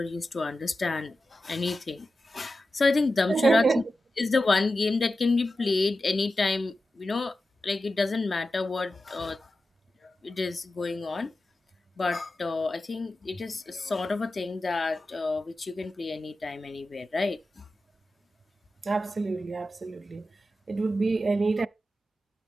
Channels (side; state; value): both; normal; correlation 0.92